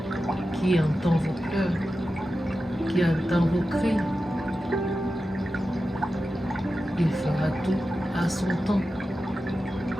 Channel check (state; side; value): normal; both; correlation 0.92